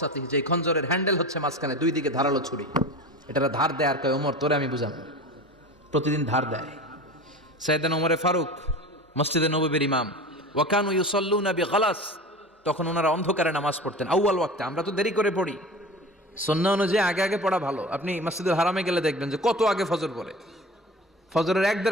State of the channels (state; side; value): normal; both; correlation 0.34